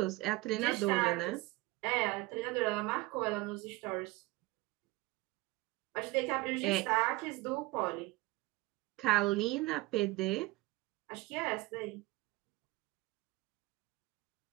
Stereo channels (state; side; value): quieter; left; 20.9 dB